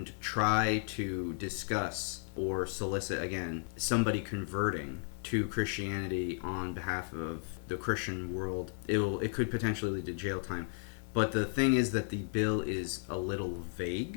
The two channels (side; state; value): right; silent; 55 dB below the other